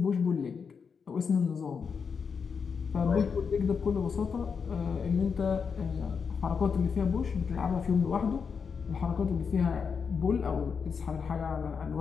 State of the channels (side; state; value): right; quieter; 6.0 dB